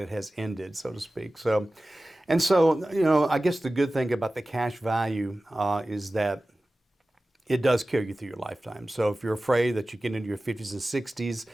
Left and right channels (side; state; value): both; normal; correlation 0.96